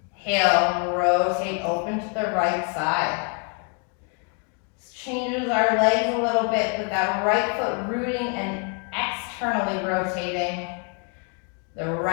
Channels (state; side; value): quieter; right; 37.3 dB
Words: rotate, open to the right side. This changes our legs a little bit with that right foot rooting and externally rotating. The